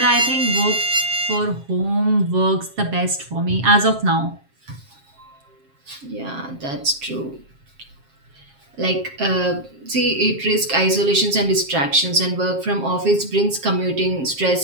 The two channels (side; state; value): left; late; 7.4 ms